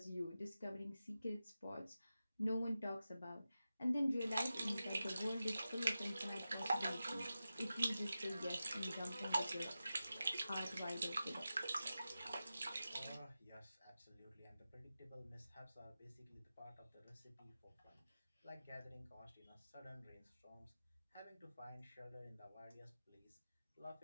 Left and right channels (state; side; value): inverted; both; correlation -0.92